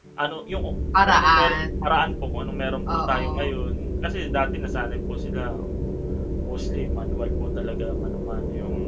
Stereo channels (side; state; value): both; identical; correlation 1.00